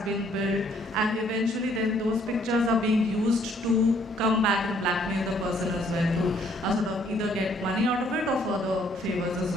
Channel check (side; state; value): both; normal; correlation 0.65